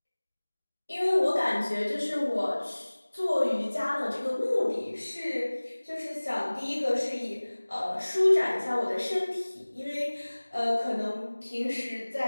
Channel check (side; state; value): both; inverted; correlation -1.00